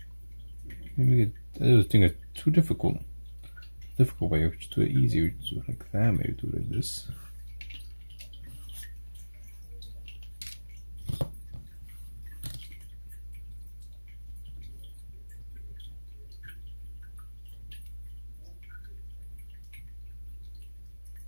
Maybe we could, I was thinking it's too difficult. Difficult way. We just do it easy. We just do it like that. Maybe do it like this.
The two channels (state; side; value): inverted; both; correlation -1.00